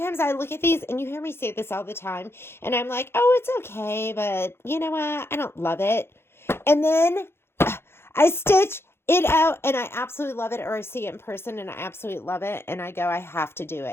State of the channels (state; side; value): late; right; 0.12 ms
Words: I look at these, and you hear me say this all the time, and I'm like, oh, it's okay, but you know what? I don't love it. And then I stitch it out and I absolutely love it, or I see it in person and I absolutely love it and I go, I have to do